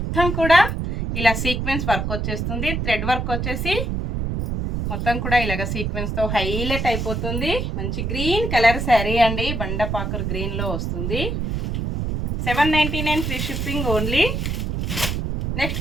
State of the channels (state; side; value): noise; right; rumble, 1 dB below the sound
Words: కూడా ఇలా సీక్వెన్స్ వర్క్ వచ్చేస్తుంది. థ్రెడ్ వర్క్ వచ్చేసి మొత్తం కూడా ఇలాగ సీక్వెన్స్తో హైలైట్ అయిపోతుంది. మంచి గ్రీన్ కలర్ శారీ అండి. బండపాకర్ గ్రీన్లో వస్తుంది. 799 free shipping only.